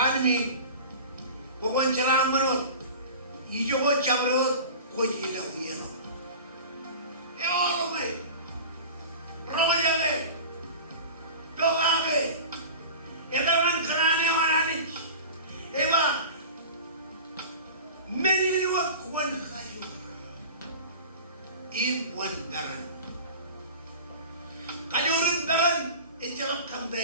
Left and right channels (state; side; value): inverted; both; correlation -0.36